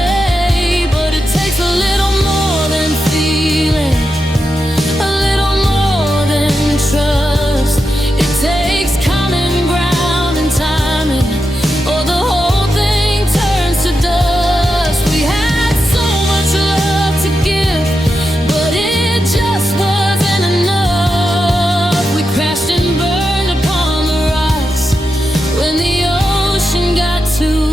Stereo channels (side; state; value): both; normal; correlation 0.88